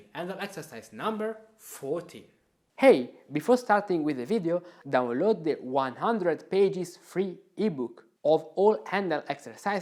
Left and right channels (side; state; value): both; identical; correlation 1.00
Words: Handel exercise number 14. Hey, before starting with the video, download the 100 pages free ebook of all Handel